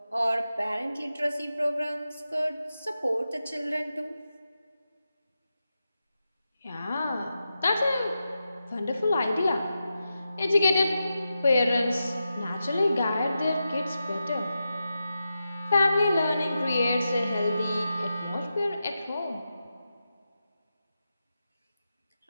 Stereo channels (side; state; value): both; inverted; correlation -0.90